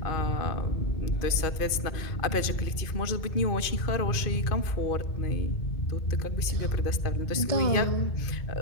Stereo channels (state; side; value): late; right; 2.5 ms